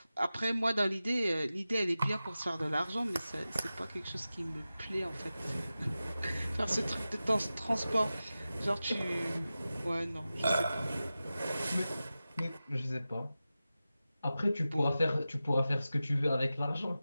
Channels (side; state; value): both; inverted; correlation -0.94